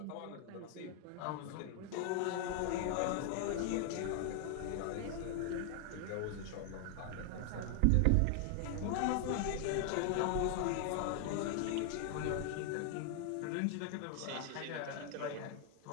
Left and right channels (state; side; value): different; both; correlation 0.00